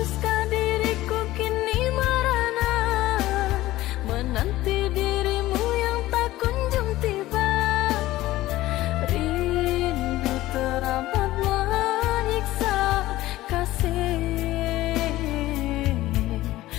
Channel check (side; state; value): right; quieter; 16.5 dB